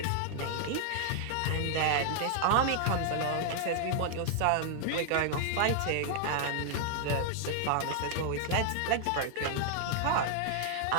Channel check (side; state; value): both; different; correlation 0.00